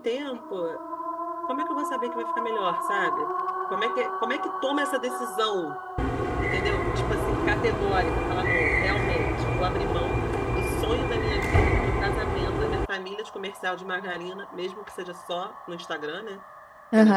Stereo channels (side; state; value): both; identical; correlation 1.00